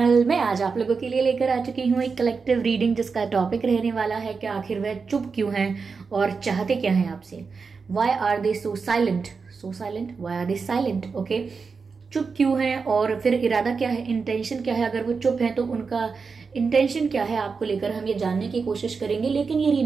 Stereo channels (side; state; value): left; quieter; 5.0 dB